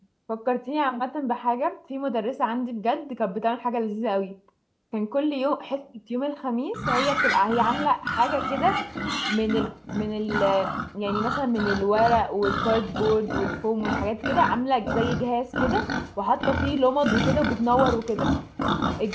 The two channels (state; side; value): identical; both; correlation 1.00